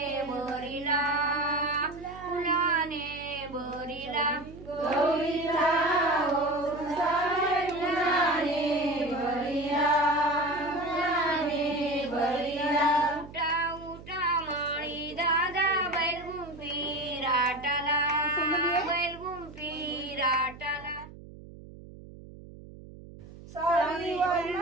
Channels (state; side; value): noise; right; hum, 17 dB below the sound